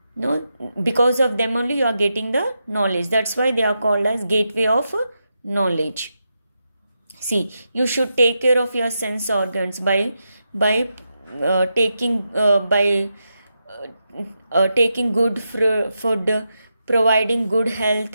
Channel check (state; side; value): inverted; both; correlation -0.86